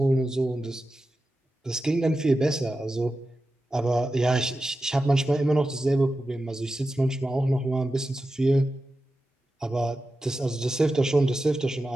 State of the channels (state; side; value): normal; both; correlation 0.92